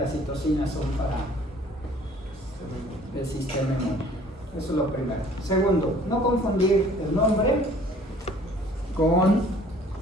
citocinas son para el sistema inmune. Eso es lo primero. Segundo, no confundir el nombre con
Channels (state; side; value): normal; both; correlation 0.54